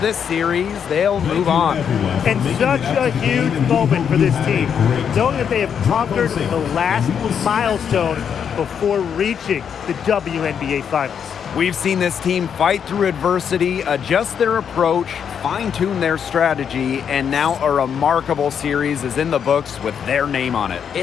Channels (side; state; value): right; quieter; 7.7 dB